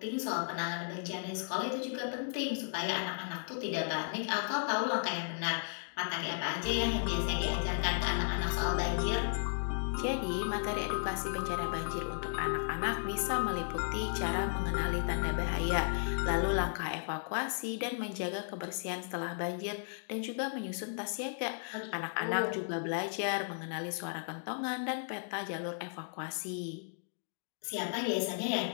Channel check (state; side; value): silent; right; digital silence